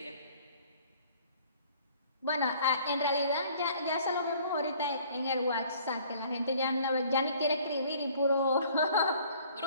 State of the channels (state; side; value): inverted; both; correlation -0.55